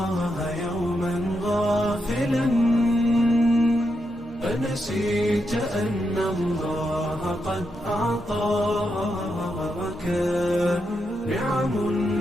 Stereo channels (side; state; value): left; noise; hum, 25 dB below the sound